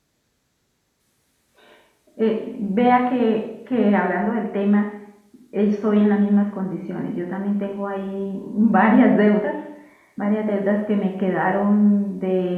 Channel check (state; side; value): identical; both; correlation 1.00